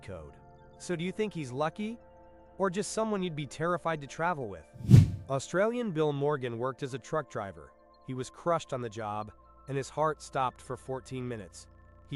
code. So do you think he's lucky? Or just someone you'd be terrified to travel with? Australian Bill Morgan worked as a truck driver. He was crushed on the job, and his heart stopped for 14 minutes.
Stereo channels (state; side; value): identical; both; correlation 1.00